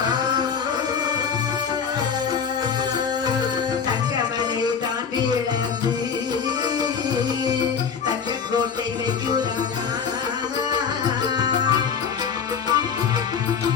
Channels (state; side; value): quieter; right; 6.7 dB